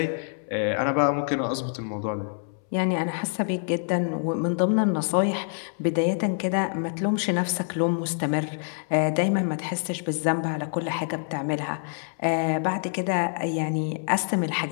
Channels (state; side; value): silent; right; 61 dB below the other